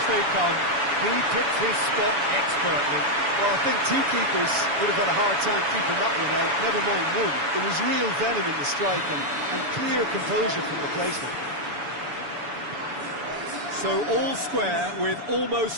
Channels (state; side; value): late; left; 7.0 ms